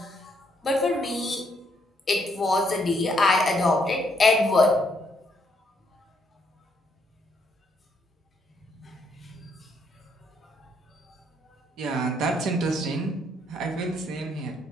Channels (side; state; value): both; normal; correlation 0.72